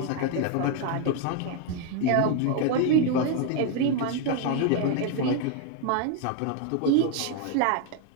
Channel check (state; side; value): different; both; correlation 0.01